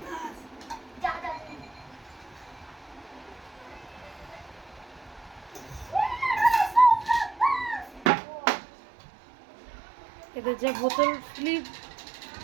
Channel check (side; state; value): left; drops out; at 8.1 s